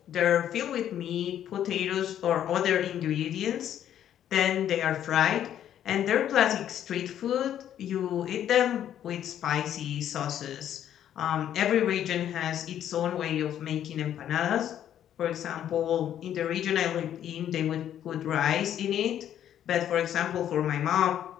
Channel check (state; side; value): quieter; right; 10.5 dB